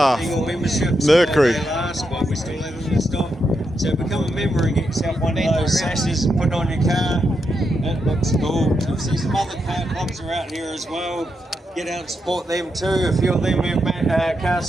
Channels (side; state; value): both; normal; correlation 0.83